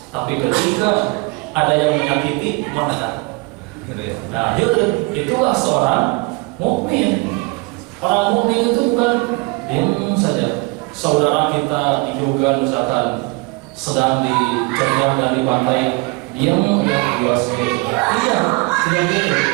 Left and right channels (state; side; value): quieter; left; 27.2 dB